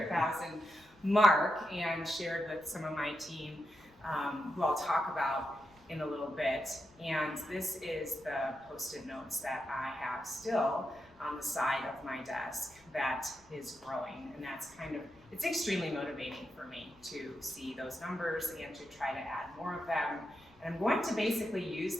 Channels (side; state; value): left; noise; rumble, 28 dB below the sound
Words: mark and shared with some of my team, who I'll talk about in a little bit. And this is the post-it notes that I have still on the side of my desk that is growing. And that's it's extremely motivating for me to see those numbers and to try to add more of them. And I'm going to basically use